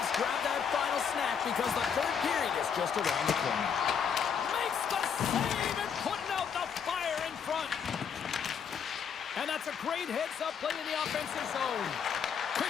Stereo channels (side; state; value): right; quieter; 7.2 dB